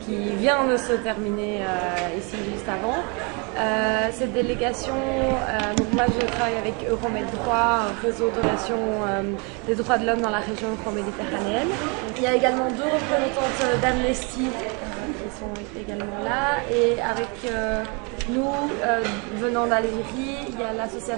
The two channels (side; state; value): left; quieter; 32.7 dB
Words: qui vient de se terminer ici juste avant. Cette délégation, donc moi je travaille avec Euromed Droit, un réseau de relations des droits de l'homme dans la région euro-méditerranéenne. Il y a également 2 représentantes d'Amnesty qui sont également là, et avec nous, venant d'Algérie, il y a